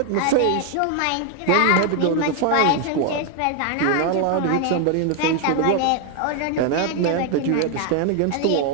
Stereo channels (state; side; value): different; both; correlation 0.00